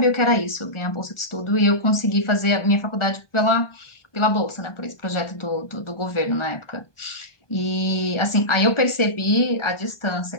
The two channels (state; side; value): late; right; 1.2 ms